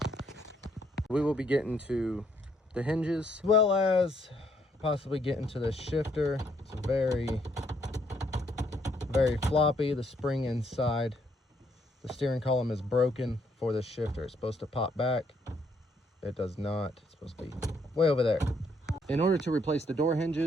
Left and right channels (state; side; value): normal; both; correlation 0.70